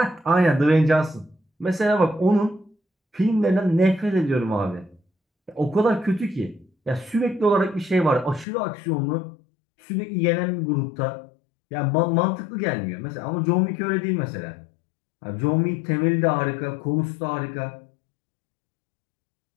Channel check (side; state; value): right; drops out; at 8.5 s